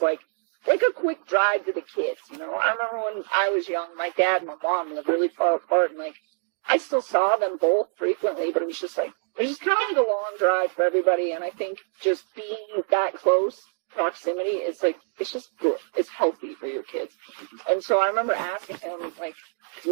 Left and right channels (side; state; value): left; silent; digital silence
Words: like a quick drive to the kids. I remember when I was young, my dad and my mom lived really far apart. And like, I still saw them both frequently, but it was just kind of like a long drive for everybody. And I think just being that close proximity is like, it's just good. It's healthy for your kids. And so I remember asking him, like,